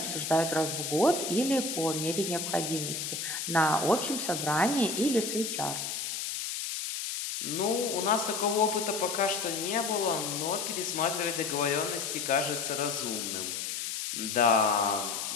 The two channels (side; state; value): left; noise; hiss, 4 dB below the sound